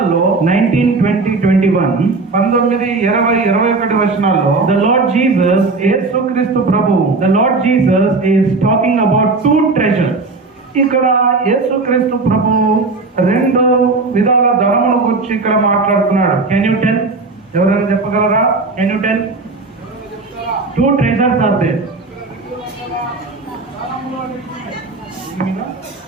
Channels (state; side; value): quieter; left; 3.7 dB